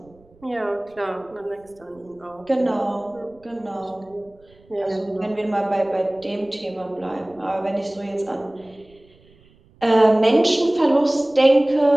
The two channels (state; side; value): noise; right; rumble, 29 dB below the sound